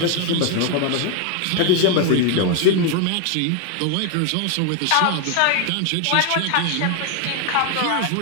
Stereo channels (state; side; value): different; both; correlation 0.01